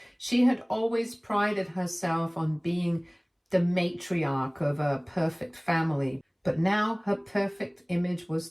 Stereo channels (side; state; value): both; identical; correlation 1.00